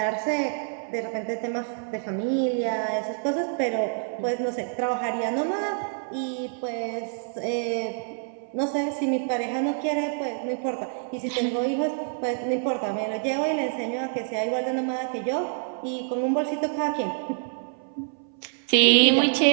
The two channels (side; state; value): left; silent; 60 dB below the other